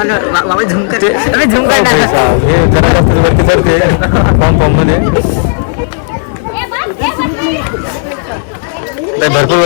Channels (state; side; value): silent; right; digital silence